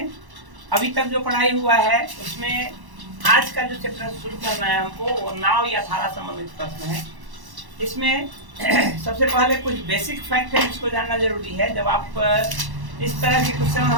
अभी तक जो पढ़ाई हुआ है उसमें आज का जो चैप्टर शुरू करना है हमको वो नाव या धारा संबंधित प्रश्न है। इसमें सबसे पहले कुछ बेसिक फैक्ट है जिसको जानना जरूरी है। जब आप इस तरह के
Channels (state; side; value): late; left; 1.1 ms